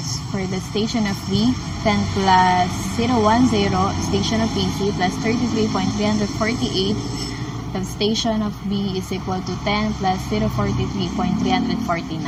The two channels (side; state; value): both; identical; correlation 1.00